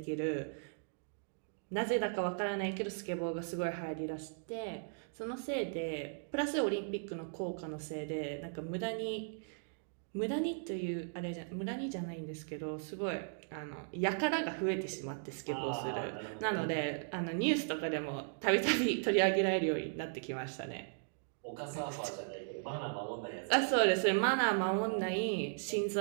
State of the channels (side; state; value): left; silent; digital silence